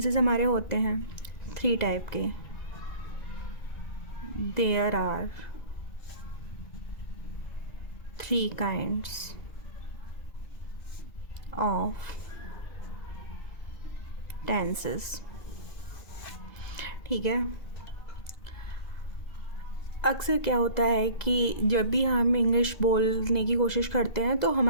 हमारे होते हैं 3 टाइप के. There are 3 kinds of tenses. ठीक है. अक्सर क्या होता है कि जब भी हम इंग्लिश बोलने की कोशिश करते हैं तो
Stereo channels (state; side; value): late; right; 2.0 ms